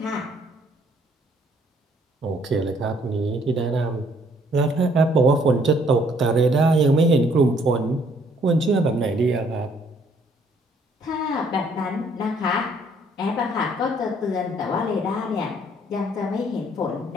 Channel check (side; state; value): both; normal; correlation 0.64